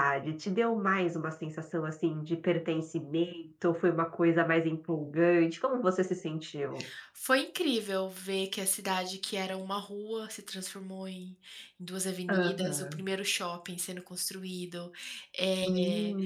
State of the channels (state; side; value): identical; both; correlation 1.00